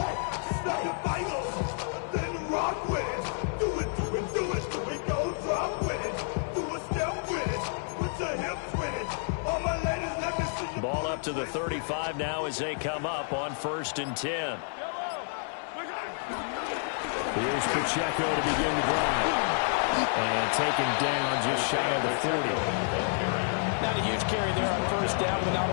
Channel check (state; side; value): silent; right; 58 dB below the other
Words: To the 35 now as they come up on 1st and 10. Here's Pacheco to begin the drive. And taken down just shy of the 40. Not a huge carry there on 1st down, but not